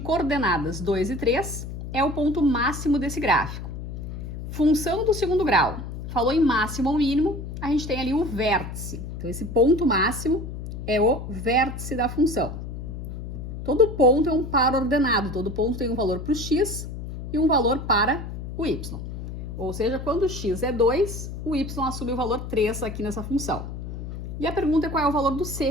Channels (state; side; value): noise; left; hum, 8 dB below the sound